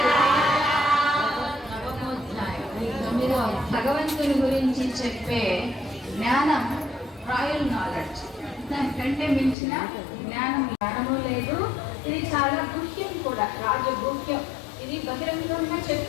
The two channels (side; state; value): right; drops out; at 9.6 s